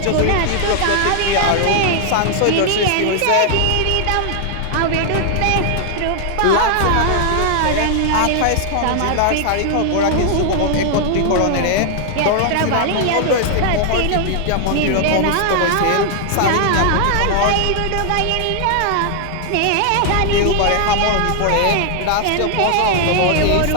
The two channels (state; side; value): different; both; correlation 0.00